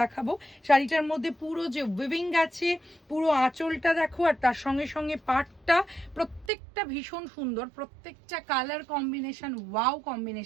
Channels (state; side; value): drops out; left; at 6.5 s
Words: দেখাবো। শাড়িটার মধ্যে পুরো যে উইভিং আছে, পুরো আঁচলটা দেখো, আর তার সঙ্গে সঙ্গে পাটটা প্রত্যেকটা ভীষণ সুন্দর, প্রত্যেকটা কালার কম্বিনেশন ওয়াও